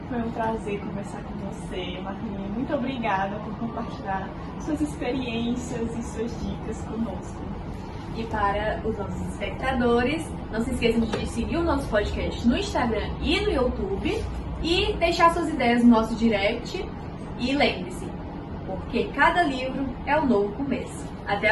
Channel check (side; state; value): both; identical; correlation 1.00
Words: Foi um prazer conversar com você, Marlinha. Muito obrigada por compartilhar suas experiências e suas dicas conosco. E para os nossos espectadores, não se esqueçam de seguir o nosso podcast no Instagram e no YouTube e deixar suas ideias no nosso direct. E lembre-se, porque cada livro é um novo começo. Até